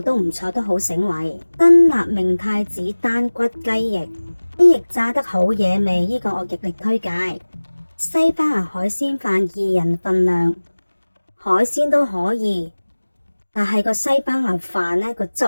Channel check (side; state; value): both; inverted; correlation -1.00